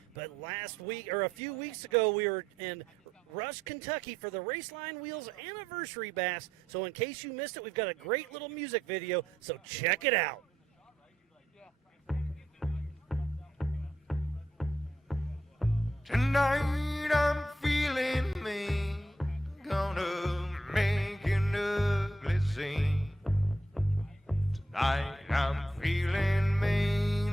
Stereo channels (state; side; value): normal; both; correlation 0.78